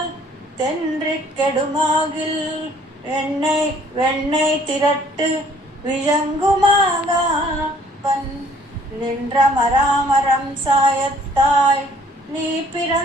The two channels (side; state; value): both; normal; correlation 0.58